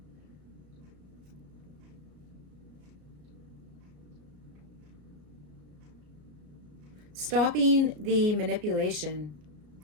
Stopping the manipulation.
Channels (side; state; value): left; late; 34 ms